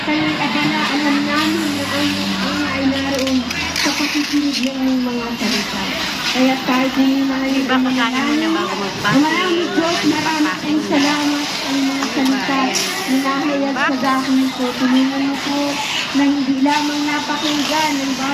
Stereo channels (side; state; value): both; identical; correlation 1.00